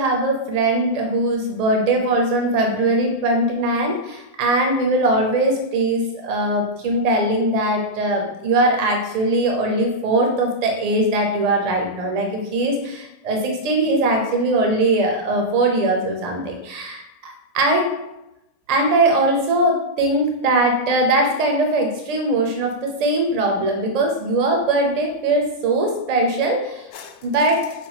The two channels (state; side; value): late; left; 1.8 ms